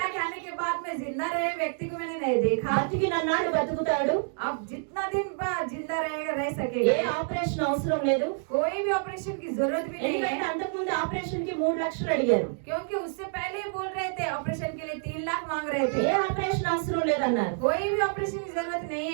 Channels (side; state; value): left; silent; 58 dB below the other